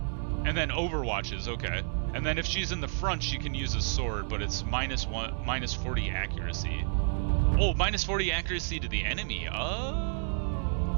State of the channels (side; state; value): left; silent; digital silence